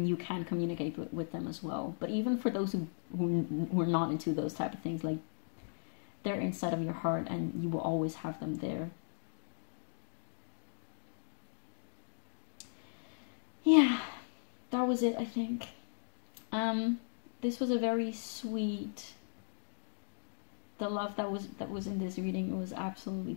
you can communicate with them as well. But even for those who are not into those type of things, like, they're inside of your heart, and you will always have them there. Yeah, that was it, I think. This was a very sweet. The love that was in this reading was absolutely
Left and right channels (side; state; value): right; silent; digital silence